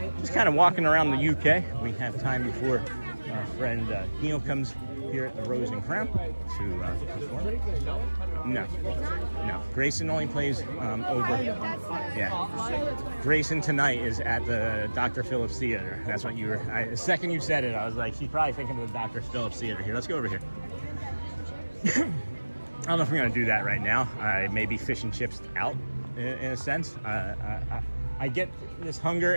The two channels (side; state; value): both; inverted; correlation -1.00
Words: just kind of walking around the UK. We have time before our friend Neil comes here at the Rose and Crown to perform. No. Grayson only plays over. Yeah. Grayson tonight is at the Dr. Phillips Theater. That's what you were. The second you said it, I was like, she's probably thinking of the Dr. Phillips Theater here. Let's go over here. I don't know if we're going to do that right now. I may be fish and chips out in a sense. I get this hunger